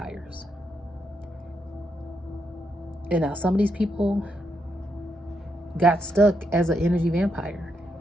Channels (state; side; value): normal; both; correlation 0.80